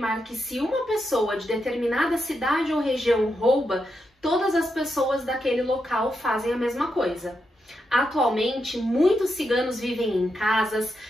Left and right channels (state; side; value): normal; both; correlation 0.84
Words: que se uma pessoa de determinada cidade ou região rouba, todas as pessoas daquele local fazem a mesma coisa. Atualmente, muitos ciganos vivem em casas,